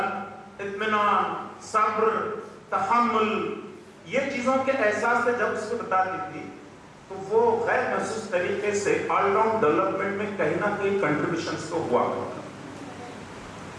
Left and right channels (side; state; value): both; identical; correlation 1.00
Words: اطمینان، صبر، تحمل، یہ چیزوں کے احساس سے جب اس کو بتاتی تھی تو وہ غیر محسوس طریقے سے آل راؤنڈ ڈیولپمنٹ میں کہیں نہ کہیں کنٹریبیوشنز تو ہوا کرتا.